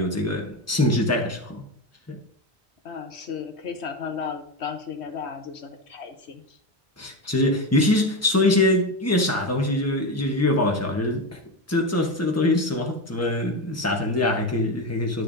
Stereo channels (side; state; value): both; normal; correlation 0.17